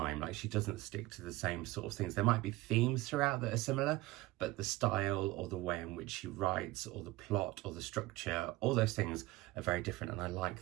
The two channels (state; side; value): quieter; left; 19.2 dB